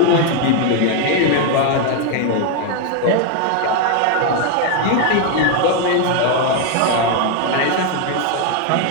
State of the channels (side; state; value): both; different; correlation 0.01